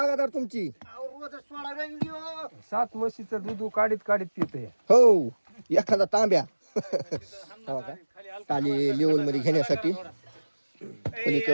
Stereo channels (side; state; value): both; inverted; correlation -1.00